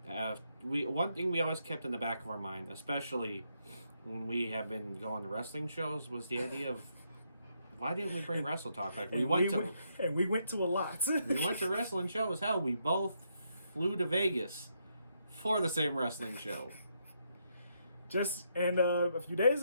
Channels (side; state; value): both; inverted; correlation -0.78